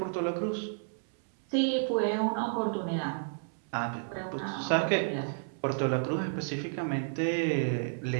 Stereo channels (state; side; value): silent; left; 57 dB below the other